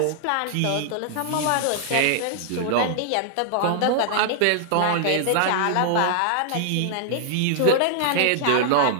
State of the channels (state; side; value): different; both; correlation 0.00